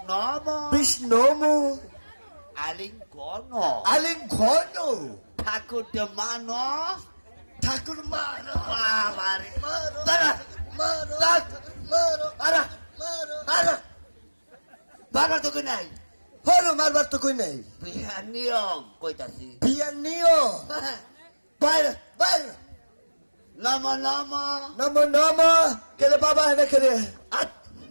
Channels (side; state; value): both; inverted; correlation -1.00